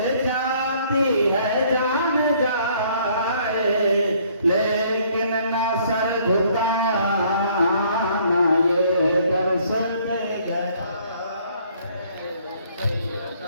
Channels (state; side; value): inverted; both; correlation -0.62